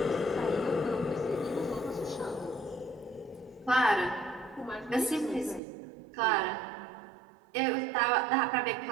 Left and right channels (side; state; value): left; drops out; at 5.6 s